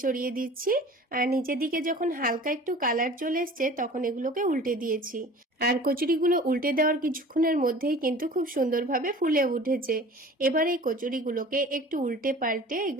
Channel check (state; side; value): normal; both; correlation 0.43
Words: ছড়িয়ে দিচ্ছি, আর নিচের দিকে যখন হালকা একটু কালার চলে এসছে তখন এগুলোকে উল্টে দিয়েছি। আর কচুরিগুলো উল্টে দেওয়ার কিছুক্ষণের মধ্যেই কিন্তু খুব সুন্দরভাবে ফুলে উঠেছে। এবার এই কচুরিগুলোকে একটু উল্টে পাল্টে